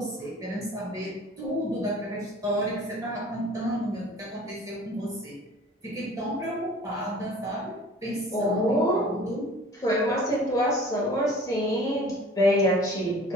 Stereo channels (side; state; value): both; normal; correlation 0.47